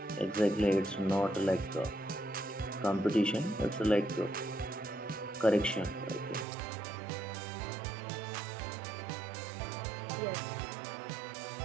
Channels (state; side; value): drops out; left; at 6.5 s